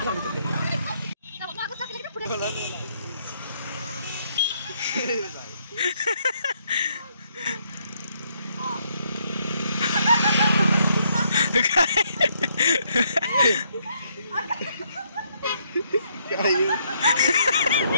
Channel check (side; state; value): both; inverted; correlation -0.72